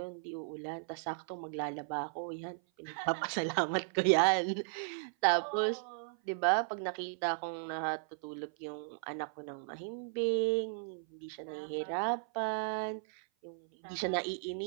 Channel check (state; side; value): silent; left; 54 dB below the other